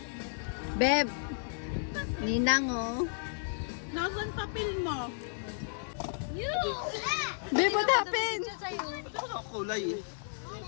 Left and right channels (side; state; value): right; silent; digital silence